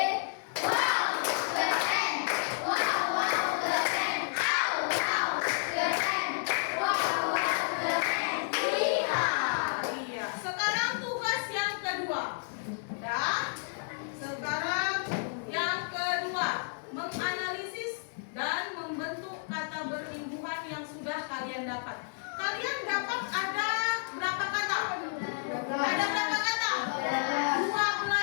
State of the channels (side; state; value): right; silent; 57 dB below the other